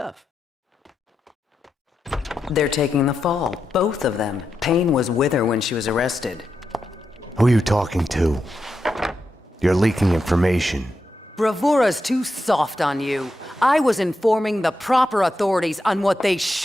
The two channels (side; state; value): both; normal; correlation 0.87